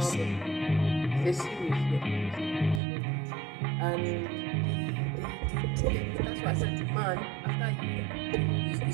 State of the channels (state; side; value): drops out; left; at 2.8 s